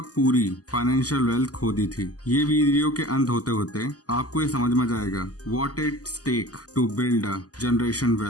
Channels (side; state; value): right; late; 0.67 ms